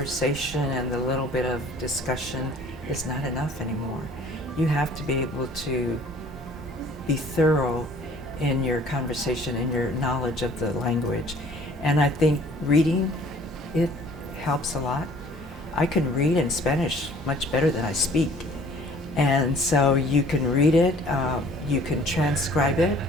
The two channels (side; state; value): both; normal; correlation 0.53